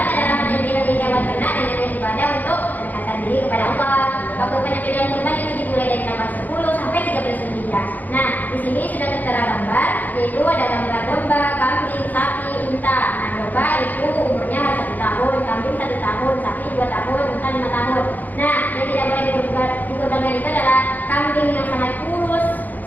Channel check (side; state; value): right; late; 0.083 ms